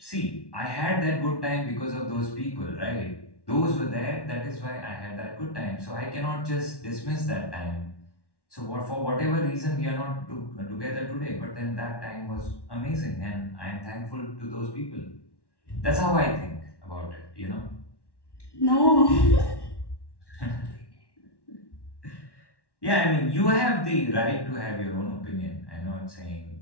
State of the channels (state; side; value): late; right; 1.1 ms